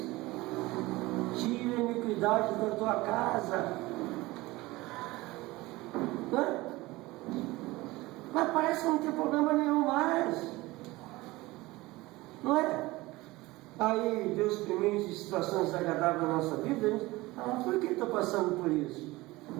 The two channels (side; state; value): left; quieter; 20.2 dB